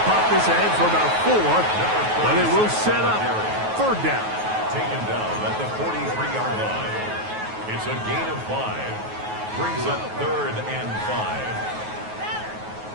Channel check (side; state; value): left; late; 9.3 ms